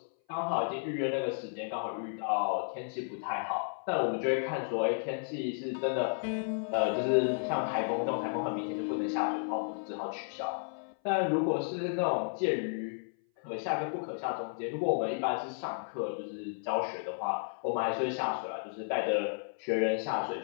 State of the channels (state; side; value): silent; right; 56 dB below the other